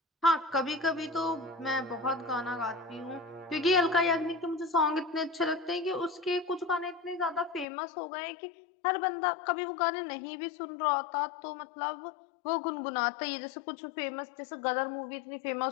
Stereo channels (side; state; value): right; drops out; at 7.7 s